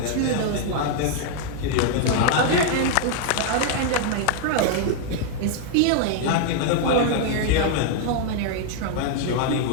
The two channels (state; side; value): different; both; correlation 0.00